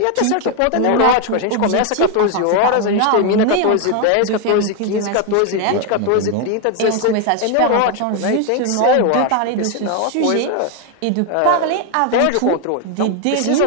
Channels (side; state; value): both; different; correlation 0.01